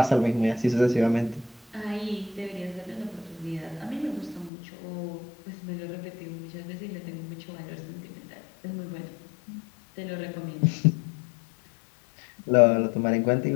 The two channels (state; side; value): drops out; right; at 4.5 s